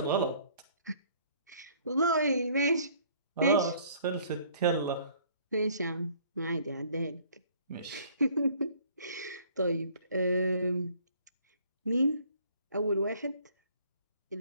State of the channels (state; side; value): inverted; both; correlation -0.58